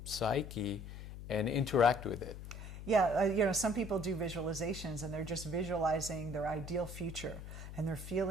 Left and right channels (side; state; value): left; noise; hum, 11 dB below the sound